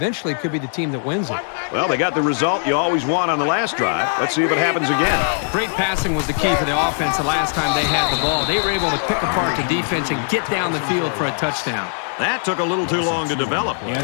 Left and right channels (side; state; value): right; silent; 66 dB below the other